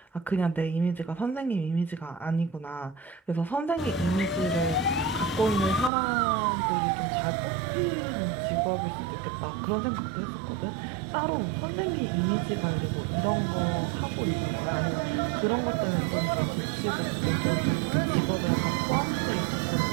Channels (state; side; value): drops out; left; at 5.9 s